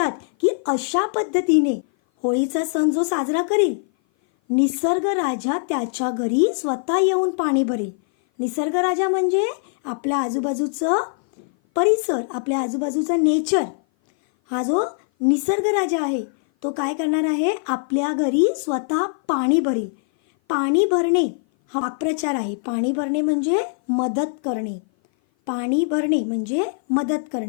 की अशा पद्धतीने होळीचा सण जो साजरा करील, निसर्ग राजा त्याच्या घरी स्वतः येऊन पाणी भरेल. निसर्ग राजा म्हणजे आपल्या आजूबाजूचं परिसर, आपल्या आजूबाजूचा नेचर. हा जो निसर्ग राजा आहे तो काय करणार आहे, आपल्या घरी स्वतः पाणी भरेल. पाणी भरणे हा वाक्प्रचार आहे. पाणी भरणे म्हणजे मदत करणे, पाणी भरणे म्हणजे मदत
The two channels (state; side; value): silent; right; 57 dB below the other